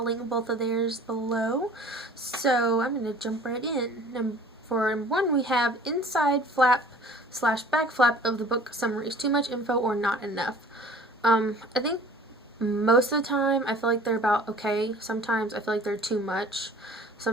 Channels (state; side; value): normal; both; correlation 0.48